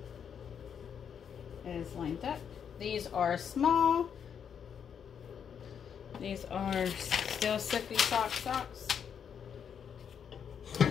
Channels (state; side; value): quieter; right; 7.7 dB